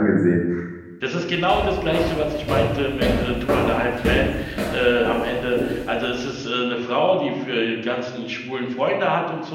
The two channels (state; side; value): identical; both; correlation 1.00